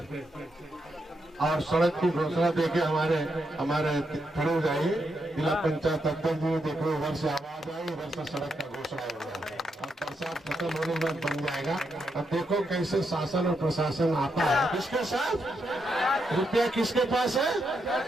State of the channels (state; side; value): normal; both; correlation 0.82